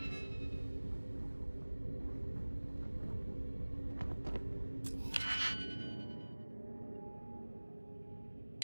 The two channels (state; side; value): inverted; both; correlation -1.00